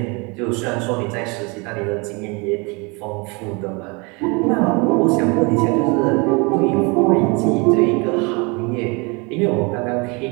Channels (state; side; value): quieter; left; 29.3 dB